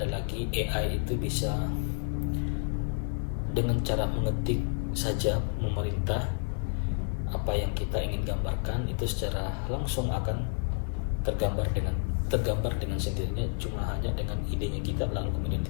lagi AI itu bisa dengan cara mengetik saja memerintah apa yang kita ingin gambarkan itu secara langsung akan tergambar dengan sendirinya, cuma hanya dengan idenya kita lalu kemudian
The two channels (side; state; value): right; silent; 57 dB below the other